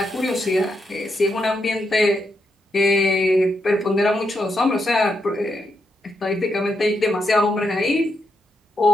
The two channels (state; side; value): normal; both; correlation 0.82